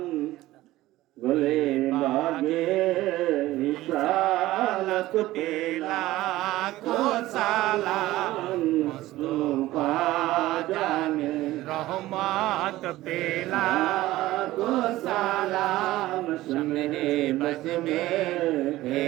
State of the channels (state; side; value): quieter; left; 16.6 dB